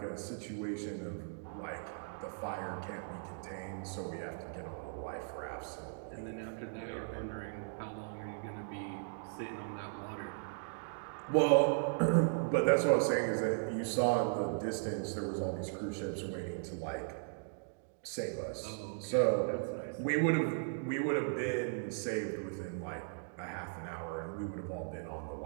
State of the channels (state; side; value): silent; left; digital silence